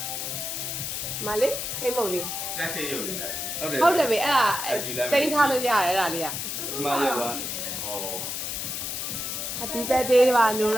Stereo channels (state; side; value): noise; left; hiss, 4 dB below the sound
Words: မလေးခိမုံလေး တက်ခေရုပ်လေးဟုတ်တယ် ဟုတ်တယ်ပဲအဲ့ဒါတိန်းထားလို့ရတယ်အဲ့ဒါလေးက မရပါဩ Happy birthday ပါနူ